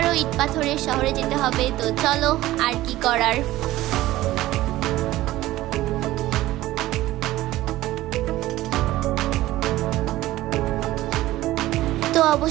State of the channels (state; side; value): quieter; left; 16.2 dB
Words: ইট পাথরের শহরে যেতে হবে, তো চলো আর কি করার। তো